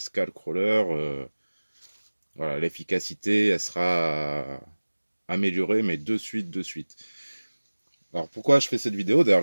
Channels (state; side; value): inverted; both; correlation -1.00